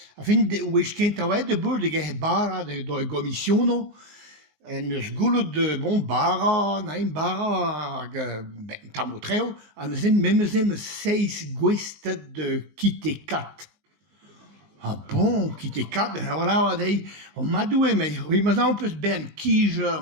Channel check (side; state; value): left; late; 20 ms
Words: A fin wech kent a oa de bur de ge bara de gomissiono. En eus goulout de bara, na bara hag ben tamotreo, an eus memezem 6 gwestet de kite kat. Ah bon, kite kat, voilà, wa dei, o madoue mei, oui, ma zan peus ben kijer